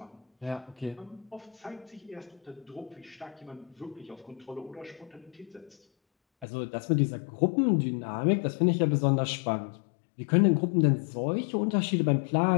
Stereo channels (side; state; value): right; drops out; at 6.5 s